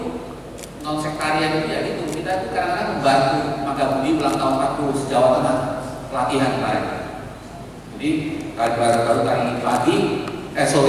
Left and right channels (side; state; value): both; identical; correlation 1.00